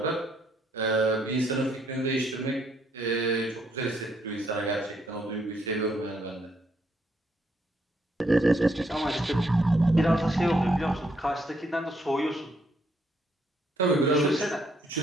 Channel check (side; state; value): both; normal; correlation 0.72